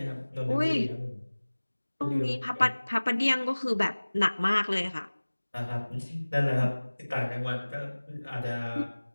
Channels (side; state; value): both; inverted; correlation -1.00